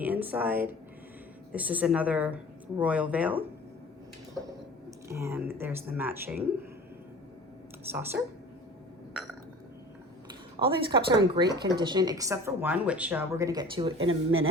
inside. This is another royal veil. And there's the matching saucer. All these cups are in great condition except for one, which we're going to get to in a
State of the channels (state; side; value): normal; both; correlation 0.42